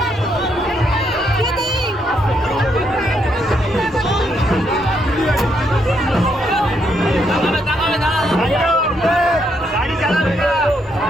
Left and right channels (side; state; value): both; normal; correlation 0.76